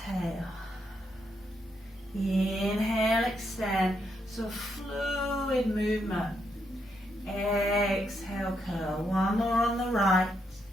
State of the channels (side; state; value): both; normal; correlation 0.79